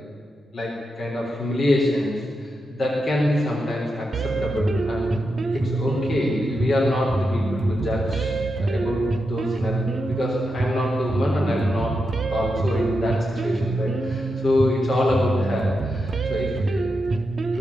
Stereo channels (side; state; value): both; normal; correlation 0.86